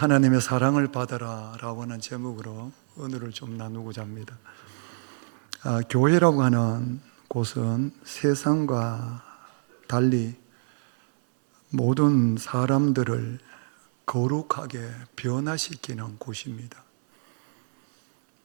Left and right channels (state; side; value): silent; left; 60 dB below the other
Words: 사랑을 받아라 라고 하는 제목으로 오늘을 좀 나누고자 합니다. 교회라고 하는 곳은 세상과 달리 모든 사람들을 거룩하게 변화시키는 곳입니다.